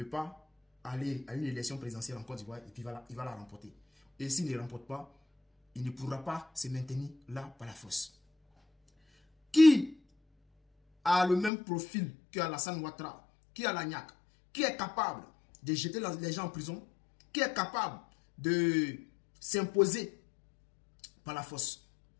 pas aller à une élection présidentielle en Côte d'Ivoire et puis il va la remporter. Et s'il ne remporte pas, il ne pourra pas se maintenir là par la force. Qui a le même profil que Alassane Ouattara, qui a la niaque, qui est capable de jeter les gens en prison, qui est capable de s'imposer par la force?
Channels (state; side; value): drops out; right; at 11.5 s